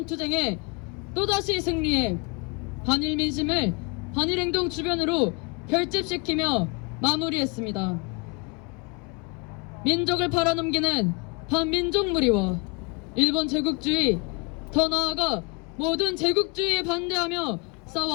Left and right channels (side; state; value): right; quieter; 29.3 dB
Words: 투쟁에 또다시 승리해 반일 민심을 반일행동 주변으로 결집시키며 마무리했습니다. 민족을 팔아넘기는 반민족 무리와 일본 제국주의, 더 나아가 모든 제국주의에 반대하며